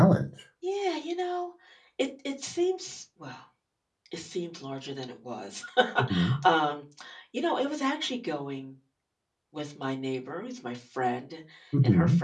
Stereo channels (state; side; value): identical; both; correlation 1.00